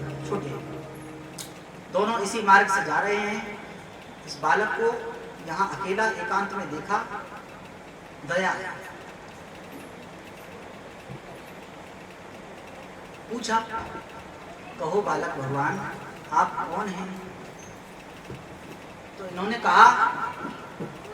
छोटे हैं। दोनों इसी मार्ग से जा रहे हैं। इस बालक को यहाँ अकेला एकांत में देखा, दया आया। पूछा, कहो बालक भगवान आप कौन हैं? तो इन्होंने कहा,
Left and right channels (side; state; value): both; identical; correlation 1.00